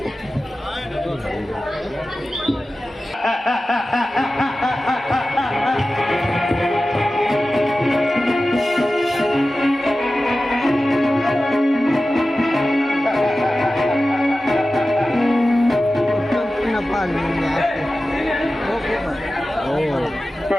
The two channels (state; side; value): normal; both; correlation 0.95